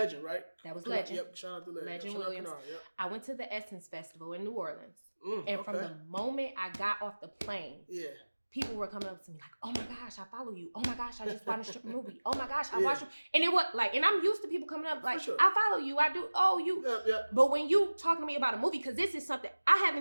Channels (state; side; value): inverted; both; correlation -1.00